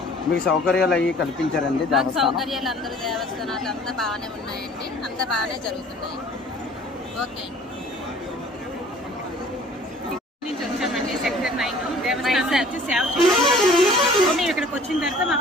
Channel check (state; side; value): normal; both; correlation 0.50